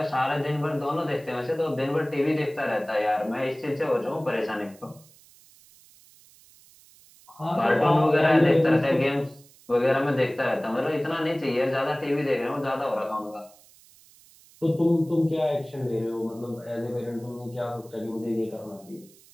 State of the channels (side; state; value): right; noise; hiss, 26 dB below the sound